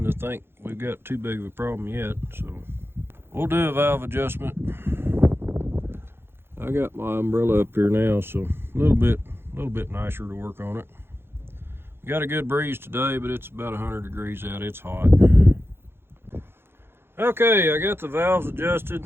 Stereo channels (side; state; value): left; late; 0.11 ms